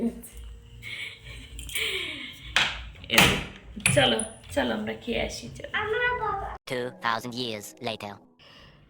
চলো চলো আমরা খেয়ে আসি। 2000 years later.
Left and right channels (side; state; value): both; identical; correlation 1.00